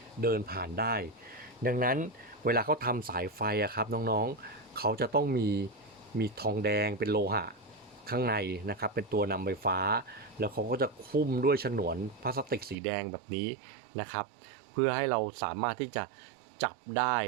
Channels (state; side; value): drops out; left; at 12.8 s